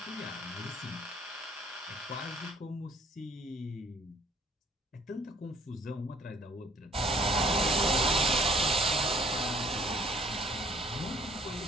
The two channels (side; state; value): both; normal; correlation 0.59